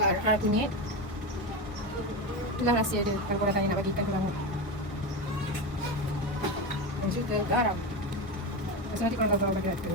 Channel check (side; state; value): both; normal; correlation 0.17